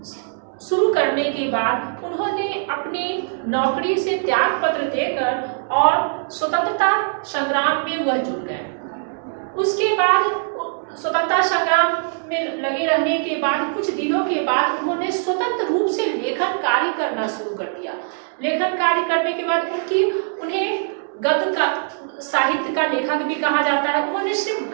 शुरू करने के बाद उन्होंने अपनी नौकरी से त्याग पत्र देकर और स्वतंत्रता संग्राम में वह जुड़ गए। उसके बाद स्वतंत्रता संग्राम में लगे रहने के बाद कुछ दिनों के बाद उन्होंने स्वतंत्र रूप से लेखन कार्य करना शुरू कर दिया। लेखन कार्य करने के बाद उन्हें गद्य का साहित्य का लेखक भी कहा जाता है। उन्होंने सिर्फ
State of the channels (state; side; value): silent; left; digital silence